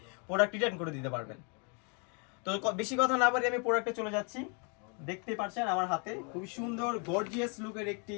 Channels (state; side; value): quieter; right; 36.2 dB